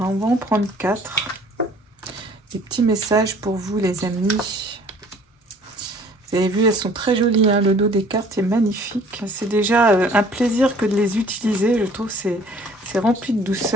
on va en prendre 4. Des petits messages pour vous, les amis. Vous avez vu, elles sont très jolies, le dos des cartes est magnifique. C'est déjà un plaisir que de les utiliser, je trouve c'est rempli de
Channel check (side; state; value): both; normal; correlation 0.53